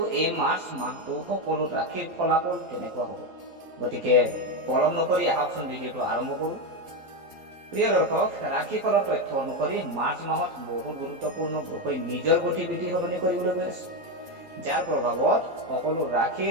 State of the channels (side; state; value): left; late; 12 ms